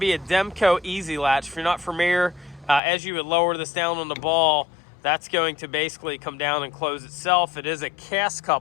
a Demco Easy Latch. If you're not familiar, as you would lower this down on the ball, that's going to basically come down and close itself. It is a cast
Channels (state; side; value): drops out; right; at 2.8 s